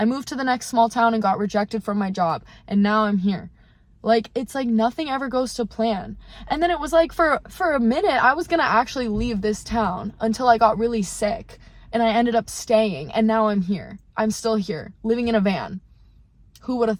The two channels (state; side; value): identical; both; correlation 1.00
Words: moved to the next small town and got rejected from my job, and now I'm here. Like, it's like nothing ever goes to plan. And then it was like for a minute, I was gonna actually leave this town until I got really sick, and I ended up staying, and now I'm here. I'm still here, living in a van. Who would have